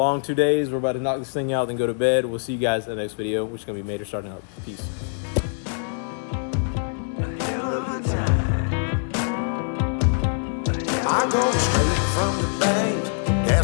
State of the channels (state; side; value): silent; right; digital silence